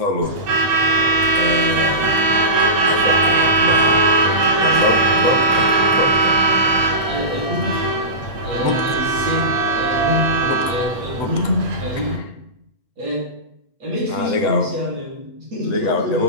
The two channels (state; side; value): late; left; 8.7 ms